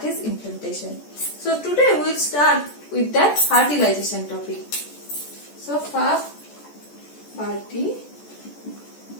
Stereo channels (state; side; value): late; right; 14 ms